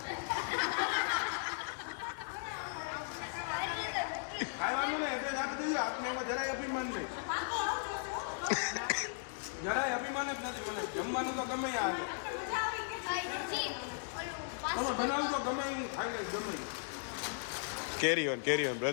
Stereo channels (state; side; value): silent; right; digital silence